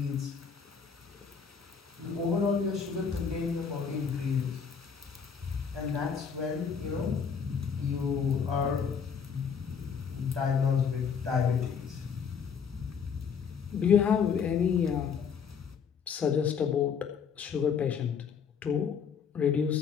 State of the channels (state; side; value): quieter; right; 6.6 dB